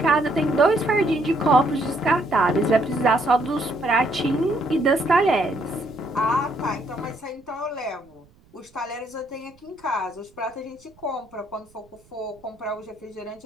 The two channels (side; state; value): right; noise; rumble, 30 dB below the sound